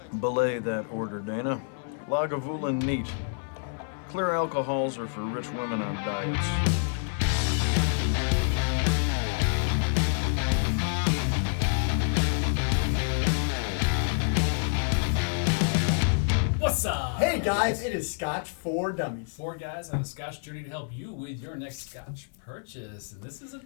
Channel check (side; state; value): right; silent; 59 dB below the other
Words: Belay that order, Dana. Lagavulin neat. Clear alcohols are for rich women on diets. What's up? Hey guys, it is Scotch for Dummies. 4 guys on a Scotch journey to help you with your next Scotch purchase. And this is a